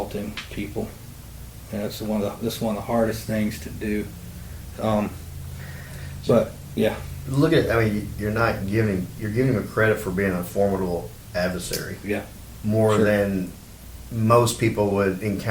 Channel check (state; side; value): identical; both; correlation 1.00